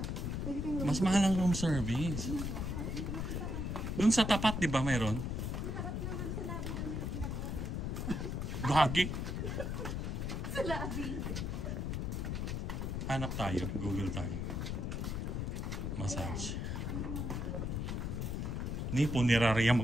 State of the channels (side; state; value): left; noise; rumble, 2 dB below the sound